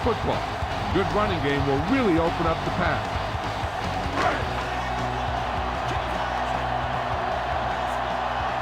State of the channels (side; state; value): both; identical; correlation 1.00